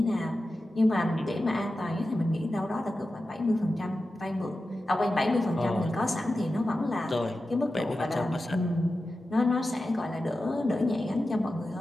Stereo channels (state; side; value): normal; both; correlation 0.92